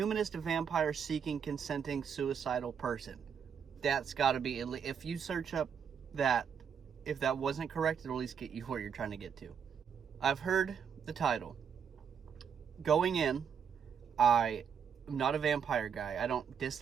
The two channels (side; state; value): left; quieter; 7.3 dB